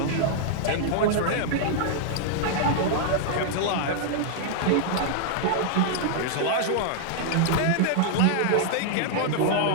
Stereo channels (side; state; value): both; different; correlation -0.01